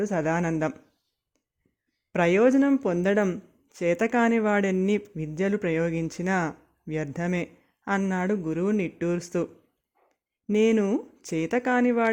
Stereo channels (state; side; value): identical; both; correlation 1.00